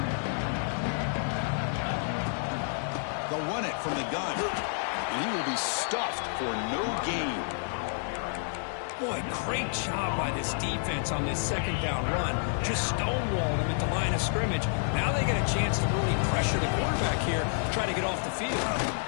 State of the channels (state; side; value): silent; right; 58 dB below the other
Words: They'll run it from the gun. And he will be stuffed for no gain. Boy, great job by this defense on this 2nd down run. Just stonewalled him at the line of scrimmage. Now they get a chance to really pressure the quarterback here to try to get off the field.